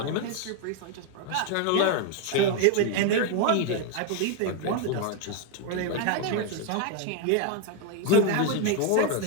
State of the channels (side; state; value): both; different; correlation 0.01